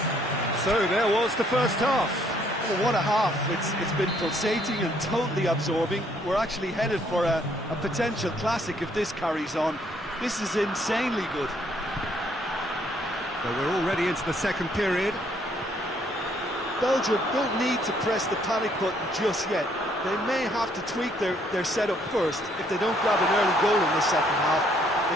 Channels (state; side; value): normal; both; correlation 0.67